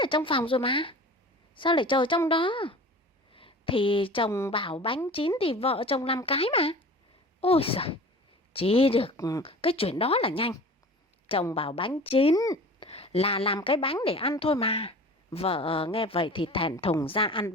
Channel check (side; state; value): both; normal; correlation 0.40